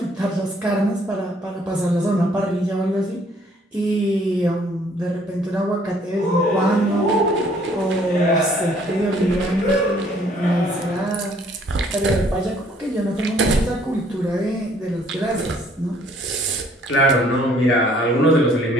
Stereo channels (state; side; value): normal; both; correlation 0.61